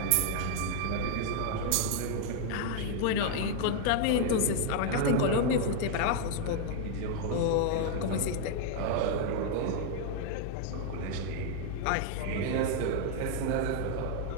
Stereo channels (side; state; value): both; different; correlation 0.00